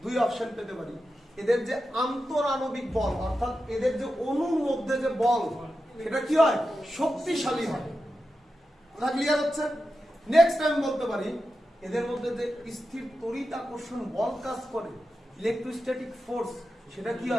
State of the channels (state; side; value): normal; both; correlation 0.90